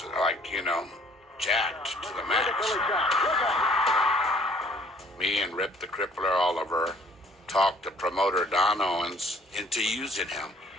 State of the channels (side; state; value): both; normal; correlation 0.57